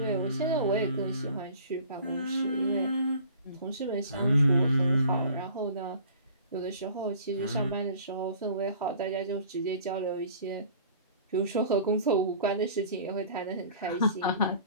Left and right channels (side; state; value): both; inverted; correlation -0.48